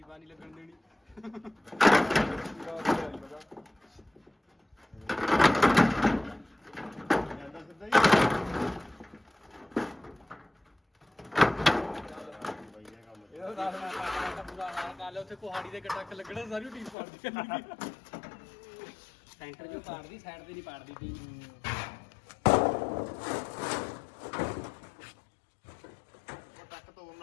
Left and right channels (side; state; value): right; drops out; at 16.9 s